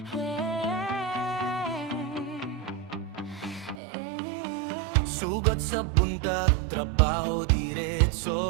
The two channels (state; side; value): drops out; left; at 3.8 s